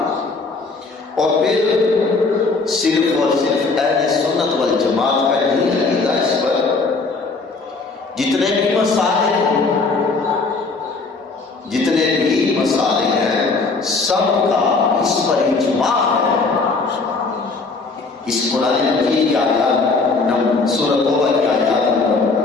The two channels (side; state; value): right; quieter; 4.0 dB